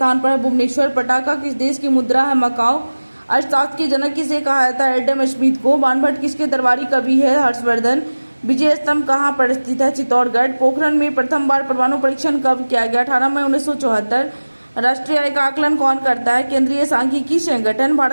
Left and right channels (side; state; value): both; inverted; correlation -1.00